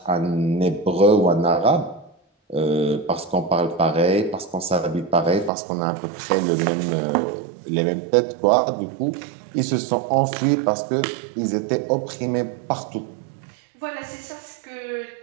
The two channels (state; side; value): drops out; left; at 5.5 s